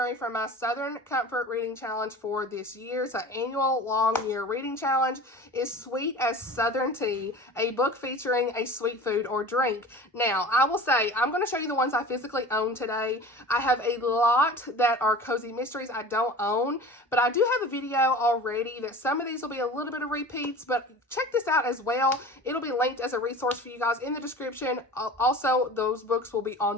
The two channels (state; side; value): normal; both; correlation 0.38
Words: for my Southern Comfort Reading Challenge for this year, it's an annual long year reading challenge, is Sweet as Southern Tea, a book featuring a sweet food or drink. Now, I will say, I'm going to show you the ones I physically own today. I have a lot that are cozy mysteries I don't own, but I do have a video already that some of these will be a little bit of repeats, but check this out as well. It'll be linked as a resource for you guys in the description. Also, those books will be on